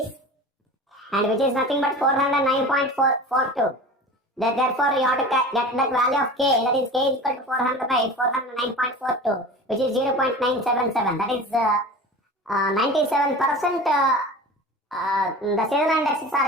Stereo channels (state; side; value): normal; both; correlation 0.35